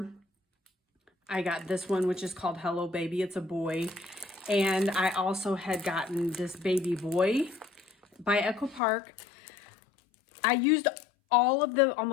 I got this one, which is called Hello Baby. It's a boy. And I also had gotten this baby boy by Echo Park. I used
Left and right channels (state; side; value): drops out; right; at 8.8 s